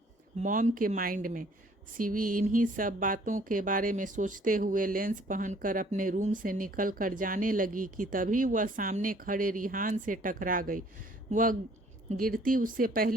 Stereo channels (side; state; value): both; normal; correlation 0.58